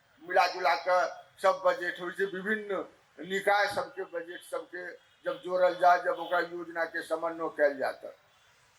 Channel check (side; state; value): both; identical; correlation 1.00